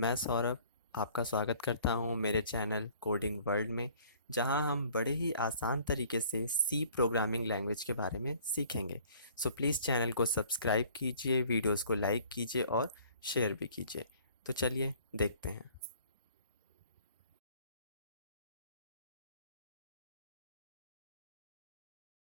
सौरभ आपका स्वागत करता हूं मेरे चैनल कोडिंग वर्ल्ड में, जहां हम बड़े ही आसान तरीके से सी प्रोग्रामिंग लैंग्वेज के बारे में सीखेंगे। सो प्लीज़ चैनल को सब्सक्राइब कीजिए, वीडियोस को लाइक कीजिए और शेयर भी कीजिए। तो चलिए देखते हैं।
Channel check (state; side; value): inverted; both; correlation -0.54